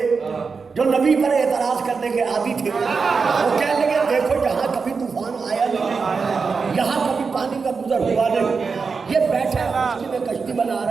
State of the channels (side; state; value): left; quieter; 5.0 dB